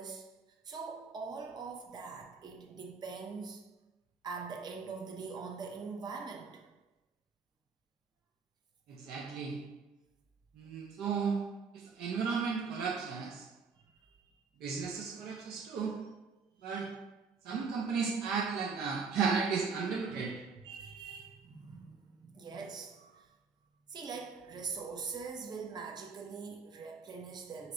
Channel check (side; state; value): left; quieter; 5.2 dB